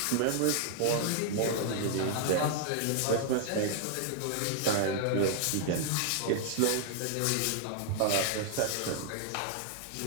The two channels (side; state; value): both; different; correlation 0.00